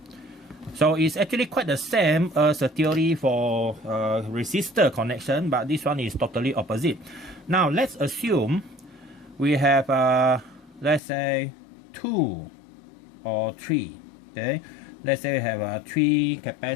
So it's actually quite the same as the theory for resistor connection, but this one is totally opposite. Now let's assume we have let's say 2 or 3, okay. Let's say we have 3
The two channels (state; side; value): drops out; right; at 11.0 s